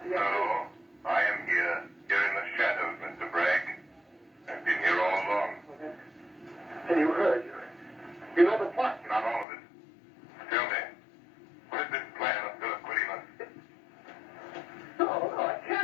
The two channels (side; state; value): right; drops out; at 9.5 s